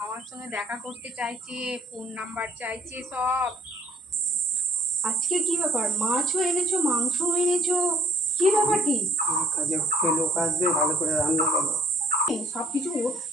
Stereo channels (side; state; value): both; normal; correlation 0.57